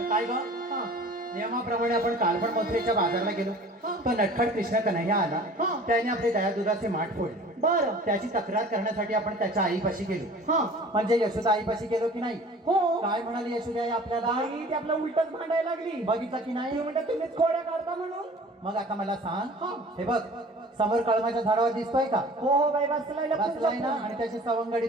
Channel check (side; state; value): both; normal; correlation 0.45